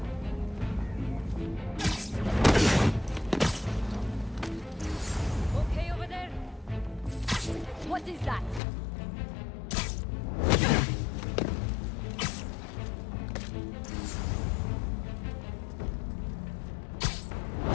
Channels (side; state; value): right; drops out; at 8.6 s